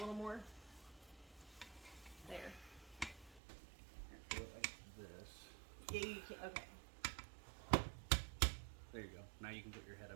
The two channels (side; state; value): left; drops out; at 3.4 s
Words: more? There. Do it like this. Yeah, you can, okay. There you go. Now you can put your head